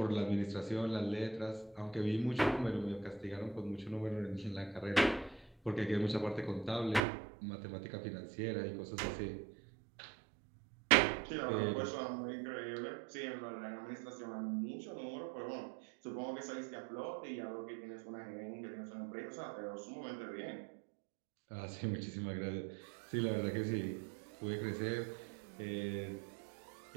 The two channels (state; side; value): drops out; left; at 7.0 s